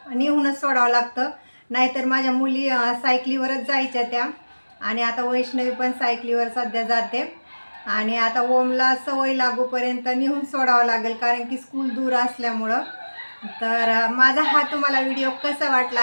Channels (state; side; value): inverted; both; correlation -1.00